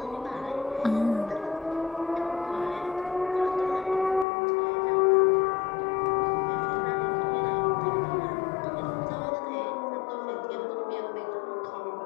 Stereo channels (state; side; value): drops out; right; at 4.2 s